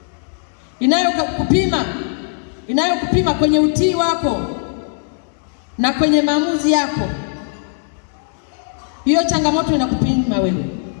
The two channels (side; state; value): right; silent; digital silence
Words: inayokupima kwenye utii wako na kwenye maamuzi yako, hiyo changamoto inakupima wewe.